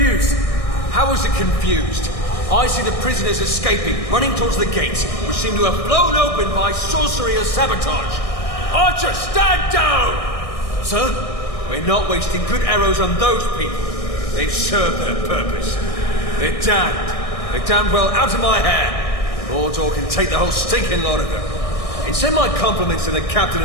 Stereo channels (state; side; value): late; right; 1.6 ms